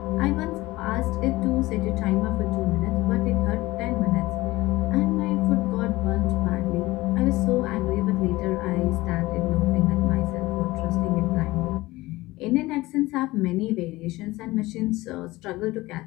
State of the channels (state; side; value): quieter; right; 19.4 dB